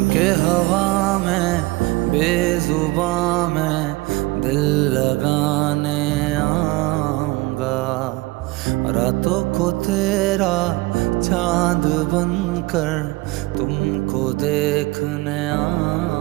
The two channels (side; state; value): left; quieter; 21.8 dB